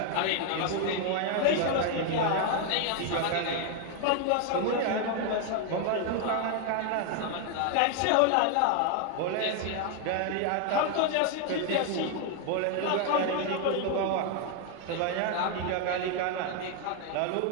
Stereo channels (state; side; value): different; both; correlation 0.01